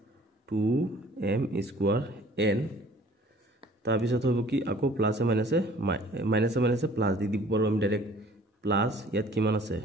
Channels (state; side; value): normal; both; correlation 0.52